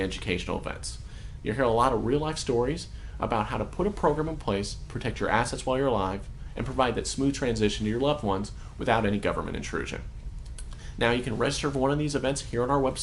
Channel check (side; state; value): both; identical; correlation 1.00